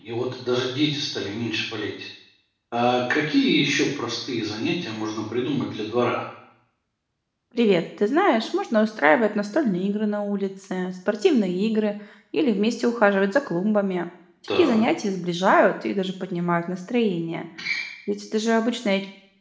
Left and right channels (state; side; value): identical; both; correlation 1.00